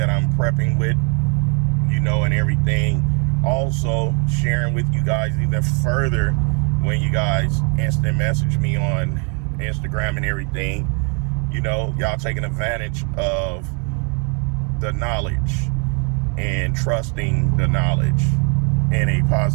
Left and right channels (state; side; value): quieter; left; 37.2 dB